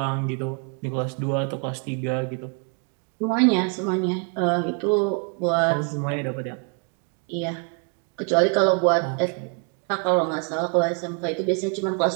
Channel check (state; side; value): quieter; left; 37.3 dB